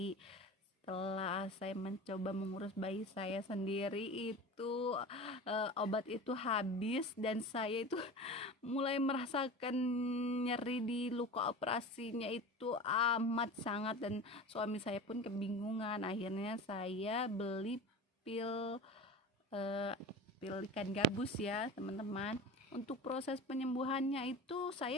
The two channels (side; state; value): both; normal; correlation 0.33